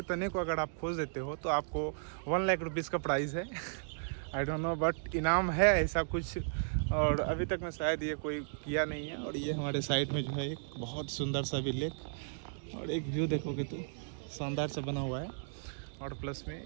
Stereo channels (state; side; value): silent; left; digital silence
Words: तने को अगर आप खोज देते हो तो आपको 1 लाख रुपीज़ का प्राइज़ है। आई डोंट नो बट इनाम है ऐसा कुछ, और अभी तक मैं शायद ये कोई किया नहीं है। और ये हमारे साइड में जो है एक बहुत सुंदर सा भी लेक और एक व्यू देखोगे तो शानदार से बना हुआ है। और प्लस में